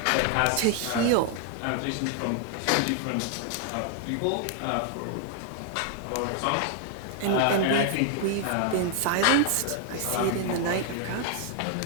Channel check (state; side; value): different; both; correlation 0.00